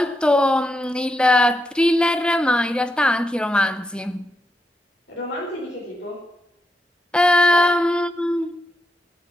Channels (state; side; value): normal; both; correlation 0.84